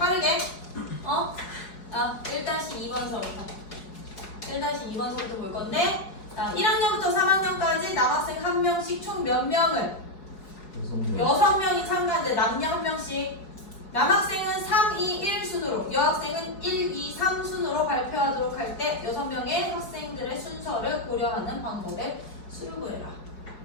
1-2번서부터 1-2번서부터 볼 건데 1학년부터 3학년까지 남학생 1명씩 총 몇 명을 6명이 참가하는데 남녀 1명씩 남학생은 3, 2, 1 순으로 여학생은 1, 2, 3 순으로 발표하도록 할 때 6명의 학생들의 순서를 고려하는 방법에 수를 구해라.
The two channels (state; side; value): late; right; 4.8 ms